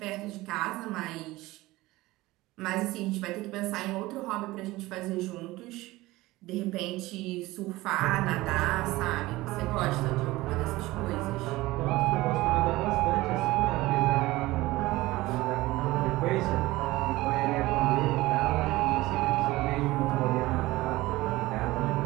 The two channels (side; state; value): left; quieter; 19.1 dB